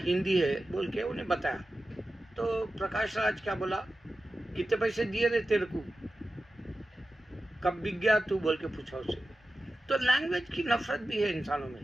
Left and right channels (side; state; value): both; normal; correlation 0.94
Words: है, बोल के उन्हें बताया। तो प्रकाश राज क्या बोला, कितने पैसे दिए थे तेरे को, कब बिक गया तू, बोल के पूछा उससे। तो लैंग्वेज की नफरत भी है इंसानों में।